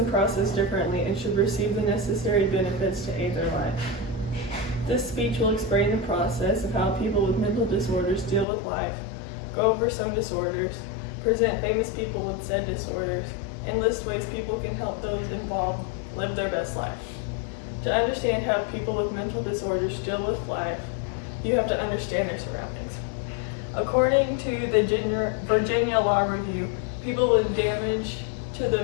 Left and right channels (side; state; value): right; drops out; at 8.5 s